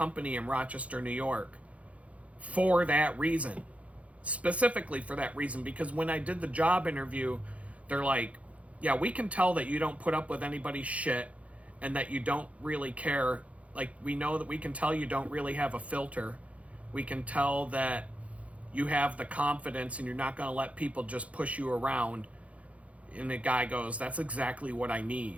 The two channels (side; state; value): left; late; 0.065 ms